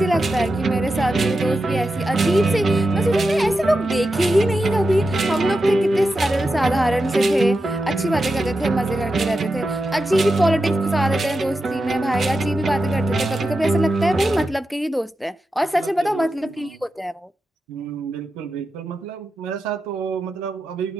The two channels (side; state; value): both; normal; correlation 0.90